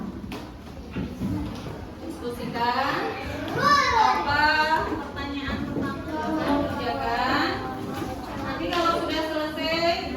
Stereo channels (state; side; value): identical; both; correlation 1.00